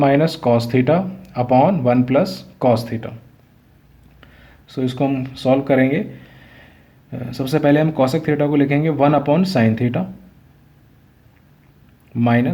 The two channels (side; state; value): both; identical; correlation 1.00